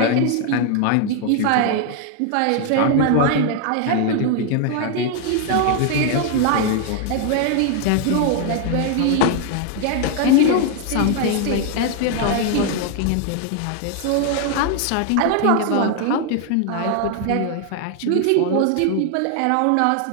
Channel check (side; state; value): both; different; correlation 0.00